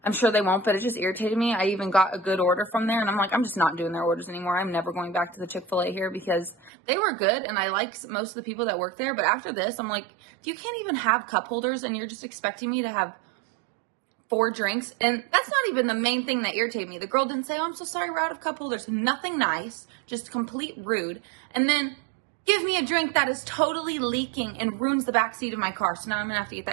I'm sure they won't, but it just irritated me. I even got a good order from there and I'm like, I'm just not doing their orders anymore. I'm never going back to the Chick-fil-A here because they were good and I like most of the people that work there. But after this, I'm like, you can't even have cup holders and you're just expecting me to have 4 drinks. And that's not even the main thing that irritated me. The girl didn't say, oh, I'm so sorry, we're out of cup holders. Nothing nice, just complete rude. And then give me a drink that is totally leaking and ruins the back seat of my car. So now I'm gonna have to get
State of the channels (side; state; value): left; drops out; at 6.7 s